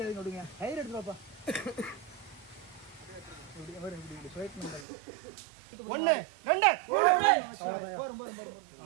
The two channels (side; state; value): left; drops out; at 4.9 s